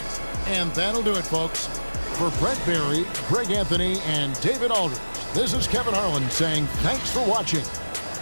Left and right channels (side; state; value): both; inverted; correlation -1.00